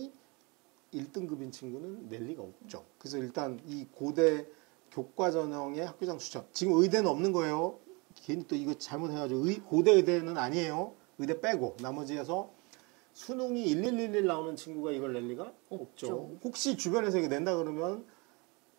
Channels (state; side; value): quieter; left; 28.8 dB